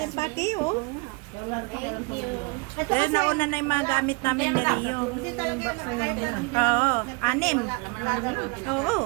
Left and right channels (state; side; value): quieter; left; 28.4 dB